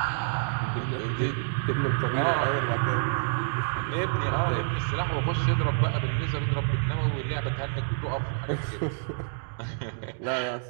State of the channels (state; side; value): silent; left; digital silence